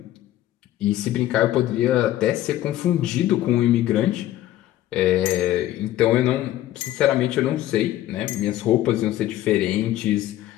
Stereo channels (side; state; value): right; quieter; 13.9 dB